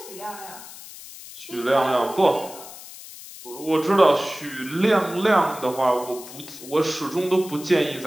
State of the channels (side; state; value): left; noise; hiss, 15 dB below the sound